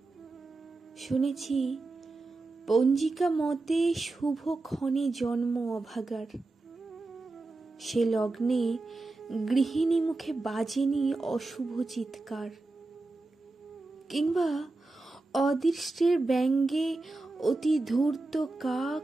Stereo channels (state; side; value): quieter; left; 3.2 dB